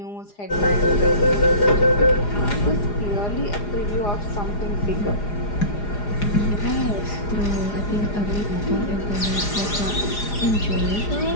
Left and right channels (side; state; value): right; late; 4.9 ms